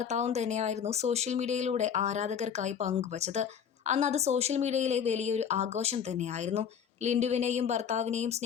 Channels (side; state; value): right; quieter; 7.7 dB